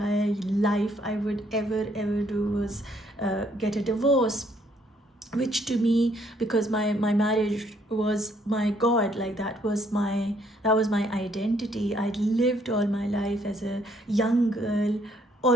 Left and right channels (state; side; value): normal; both; correlation 0.67